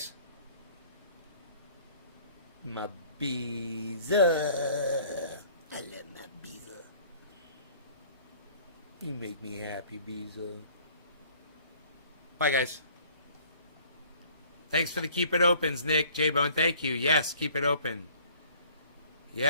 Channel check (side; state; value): both; inverted; correlation -0.54